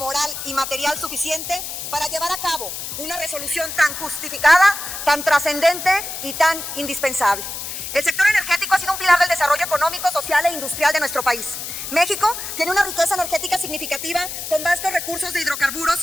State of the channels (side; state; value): left; noise; hiss, 7 dB below the sound